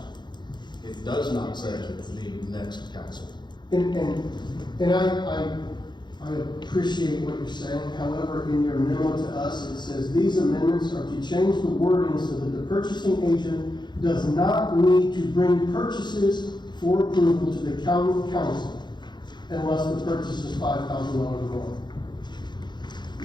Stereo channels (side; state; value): right; late; 0.21 ms